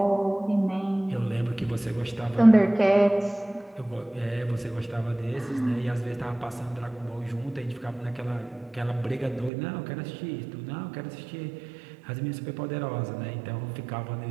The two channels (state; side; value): drops out; left; at 9.5 s